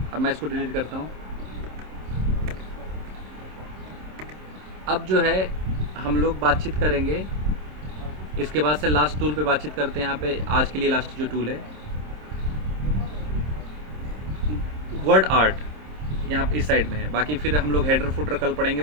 अब मैं इसको डिलीट करता हूँ। अब जो है हम लोग बातचीत करेंगे, इसके बाद से लास्ट टूल पे बातचीत करते हैं। यहाँ पे आज के लिए लास्ट जो टूल है वर्ड आर्ट, यहाँ पे इस साइड में है। बाकी फिर हम लोग हेडर फुटर कल पढ़ेंगे,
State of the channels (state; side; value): late; left; 26 ms